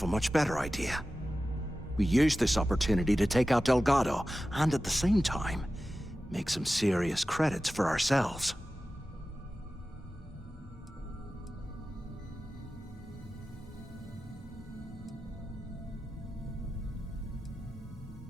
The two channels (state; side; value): normal; both; correlation 0.94